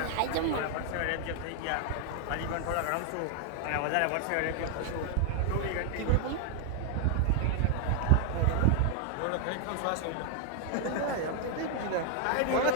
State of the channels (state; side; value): different; both; correlation 0.00